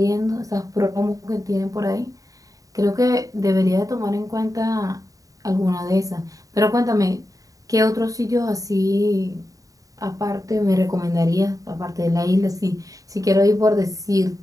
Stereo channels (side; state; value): left; late; 0.16 ms